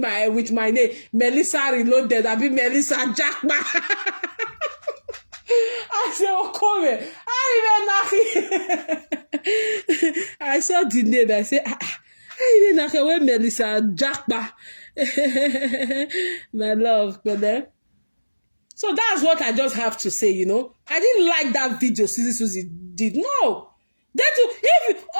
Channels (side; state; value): both; inverted; correlation -1.00